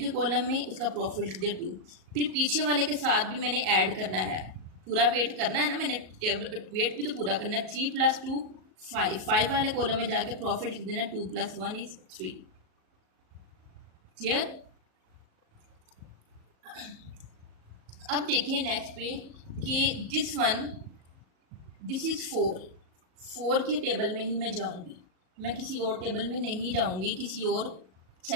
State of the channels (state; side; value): late; left; 38 ms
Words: कॉलम में उसका प्रॉफिट लिख दिया 2, फिर पीछे वाले के साथ भी मैंने ऐड करना है, पूरा वेट करना है ना, मैंने वेट भी तो पूरा करना है। 3 + 2 5 वाले कॉलम में जाके प्रॉफिट लिख देना, 2 + 1 = 3। क्लियर? अब देखिए नेक्स्ट पे कि दिस इज़ 4 के टेबल में ही मैं जाऊंगी, मैं किसी और टेबल में नहीं जाऊंगी, किसी और